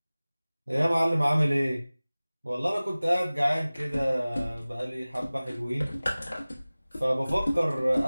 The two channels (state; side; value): inverted; both; correlation -0.99